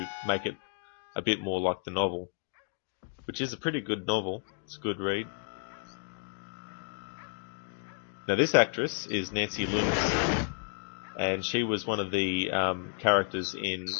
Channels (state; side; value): silent; right; 57 dB below the other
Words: make it a bit more like the novel, which is a pretty good novel. It's a good read. Now, this actress is Nancy Lewis, and she was one of the characters in